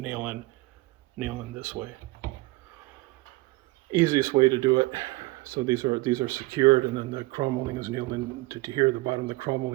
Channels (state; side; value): quieter; left; 21.5 dB